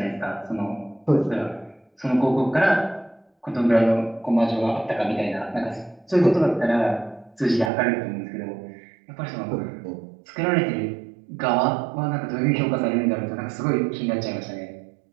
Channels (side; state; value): left; drops out; at 7.7 s